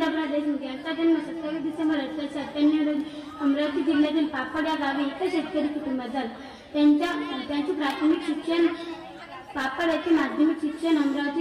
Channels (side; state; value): both; identical; correlation 1.00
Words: देशमुख यांचा जन्म 27 डिसेंबर 1898 रोजी अमरावती जिल्ह्यातील पापड या गावी एका शेतकरी कुटुंबात झाला. त्यांचे प्राथमिक शिक्षण पापड येथे, माध्यमिक शिक्षण